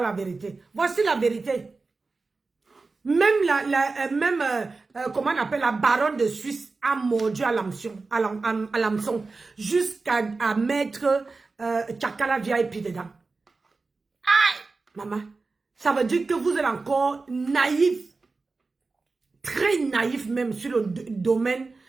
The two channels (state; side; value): quieter; left; 3.9 dB